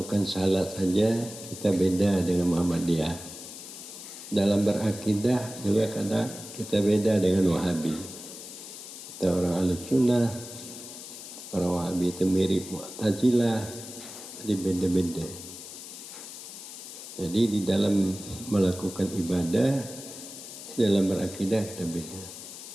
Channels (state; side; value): noise; left; hiss, 12 dB below the sound